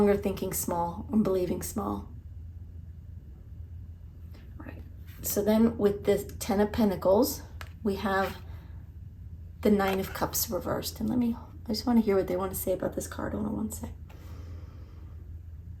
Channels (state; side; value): identical; both; correlation 1.00